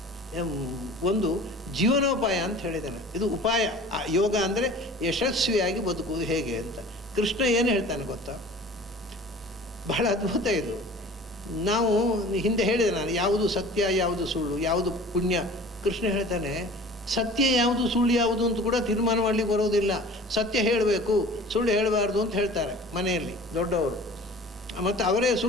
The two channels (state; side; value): normal; both; correlation 0.43